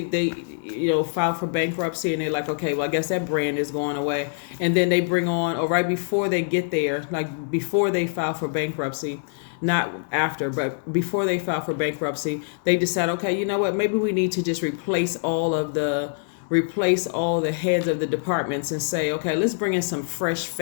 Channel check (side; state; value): right; silent; digital silence